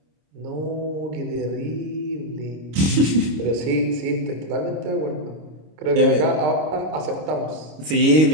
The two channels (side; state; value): left; late; 26 ms